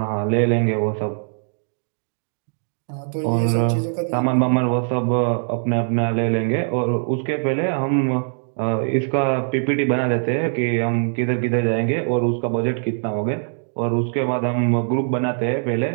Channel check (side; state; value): left; silent; digital silence